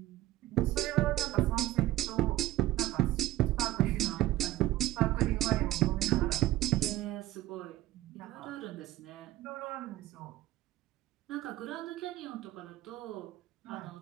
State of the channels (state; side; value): quieter; left; 15.4 dB